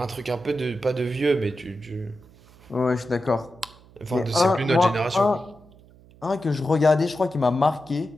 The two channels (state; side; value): noise; right; hum, 25 dB below the sound